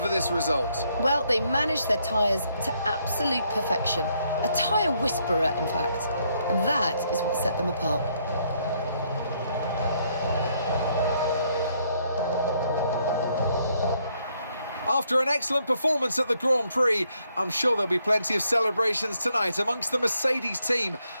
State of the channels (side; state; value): both; inverted; correlation -0.72